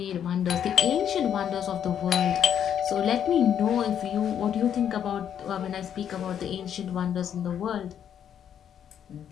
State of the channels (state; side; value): quieter; right; 9.1 dB